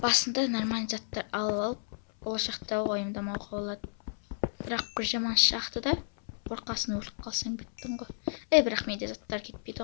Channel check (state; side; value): silent; right; 57 dB below the other